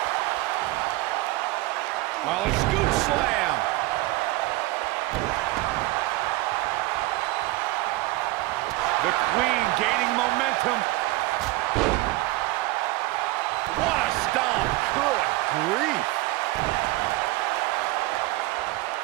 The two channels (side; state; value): left; quieter; 19.8 dB